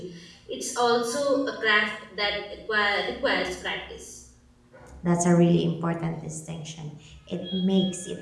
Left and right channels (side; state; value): both; identical; correlation 1.00